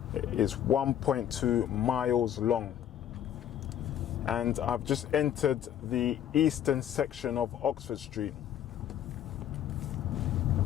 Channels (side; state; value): right; quieter; 10.4 dB